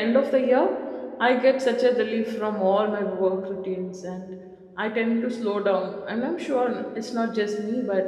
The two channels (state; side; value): identical; both; correlation 1.00